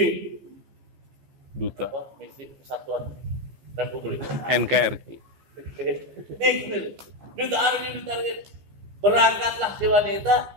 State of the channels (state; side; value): late; left; 15 ms